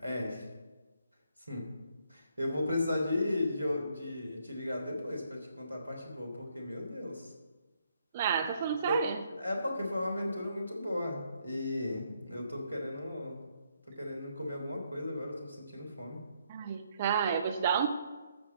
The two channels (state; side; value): inverted; both; correlation -0.74